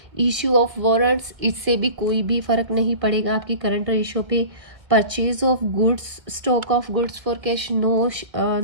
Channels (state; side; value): late; left; 1.8 ms